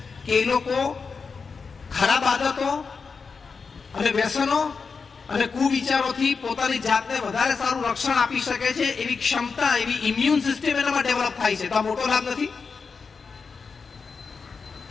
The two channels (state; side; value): quieter; right; 5.1 dB